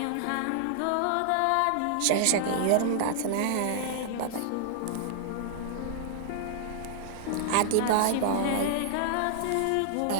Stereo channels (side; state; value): both; different; correlation -0.01